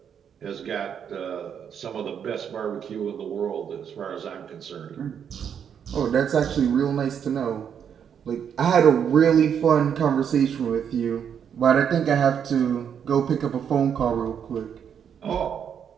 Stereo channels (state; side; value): quieter; left; 8.0 dB